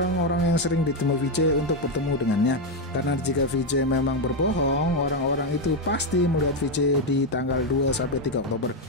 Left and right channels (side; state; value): both; normal; correlation 0.05